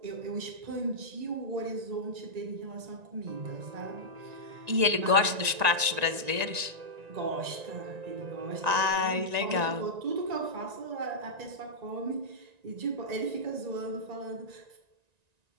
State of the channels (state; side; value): late; left; 1.9 ms